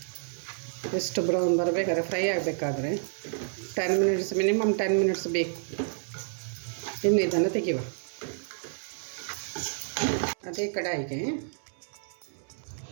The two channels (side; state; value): left; silent; 58 dB below the other